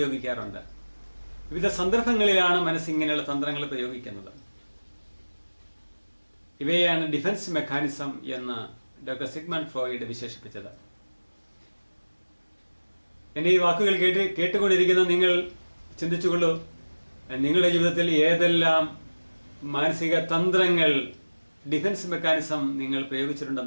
വിവിധ സന്ദർഭങ്ങളിലാണ് മനസ്സ് ഇങ്ങനെയുള്ള തന്ത്രങ്ങൾ പ്രയോഗിക്കുന്നത്. ഇവയാണ് ഡിഫൻസ് മെക്കാനിസം എന്ന് ഡോക്ടർ സിഗ്മണ്ട് ഫ്രോയിഡ് വിശേഷിപ്പിച്ചത്. എന്റെ ഈ വാക്കുകൾ കേട്ടുകൊണ്ടിരിക്കുന്ന നിങ്ങൾ ചിന്തിച്ചുകൊള്ളൂ, നിങ്ങളുടെ ജീവിതത്തിൽ ഏതെല്ലാം മാനസിക തന്ത്രങ്ങൾ, ഡിഫൻസ് മെക്കാനിസം നിങ്ങൾ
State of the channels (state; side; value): inverted; both; correlation -1.00